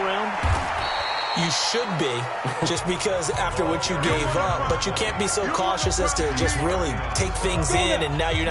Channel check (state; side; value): identical; both; correlation 1.00